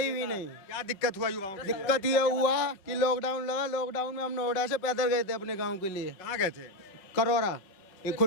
भी नहीं। क्या दिक्कत हुआ युवाओं को? दिक्कत ये हुआ कि लॉकडाउन लगा। लॉकडाउन में हम नोएडा से पैदल गए थे अपने गांव के लिए। कहाँ गए थे? करोरा, एक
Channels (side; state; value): right; late; 5.4 ms